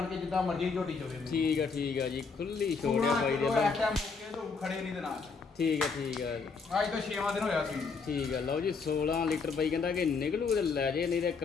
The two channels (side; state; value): right; quieter; 4.9 dB